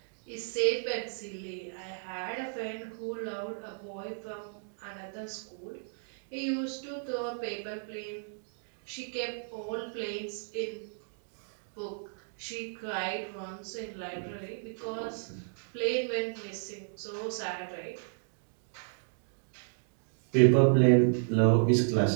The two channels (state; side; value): silent; left; digital silence